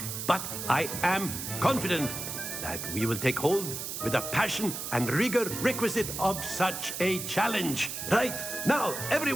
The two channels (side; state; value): right; noise; hiss, 6 dB below the sound